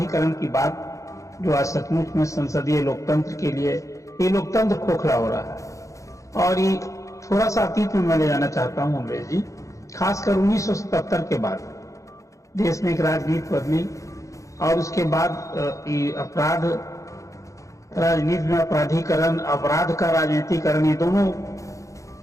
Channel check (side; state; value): right; late; 0.15 ms